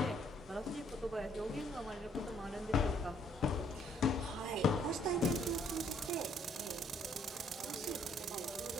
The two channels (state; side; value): normal; both; correlation 0.65